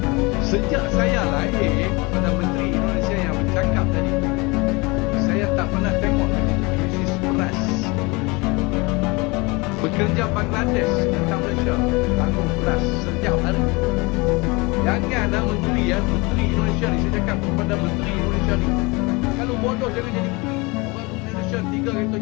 Sejak saya lahir pada menteri Indonesia yang bercakap tadi, saya tak pernah tengok krisis beras. Bekerja Bangladesh tentang Malaysia, tanggung beras setiap hari. Janganlah menteri Indonesia ni, saya cakap kepada menteri Indonesia ni, kalau bodoh jangan jadi menteri. Orang Indonesia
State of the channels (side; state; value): right; quieter; 26.0 dB